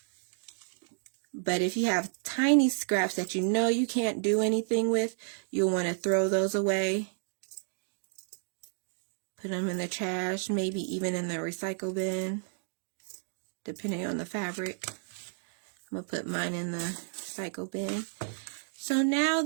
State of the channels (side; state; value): left; silent; digital silence